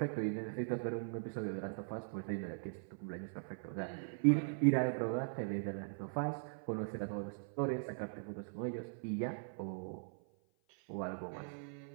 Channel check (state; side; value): silent; left; 51 dB below the other